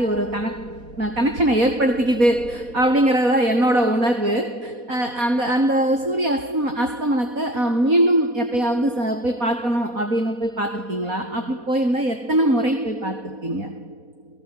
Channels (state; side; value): late; left; 4.1 ms